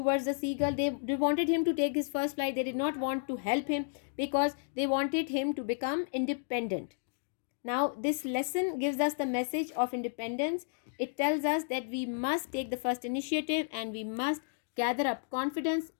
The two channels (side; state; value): right; silent; digital silence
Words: the seagull. They wanted him to take his first flight. They did not want to help him because they wanted him to become independent. Now, this lesson gives us the message of independence. It tells us that we must take the first initiative and we must gather up confidence